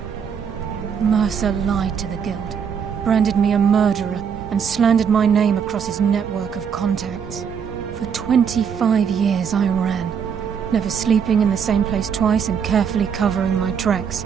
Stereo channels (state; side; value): quieter; left; 7.1 dB